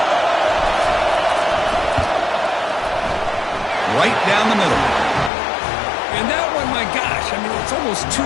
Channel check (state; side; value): drops out; right; at 5.3 s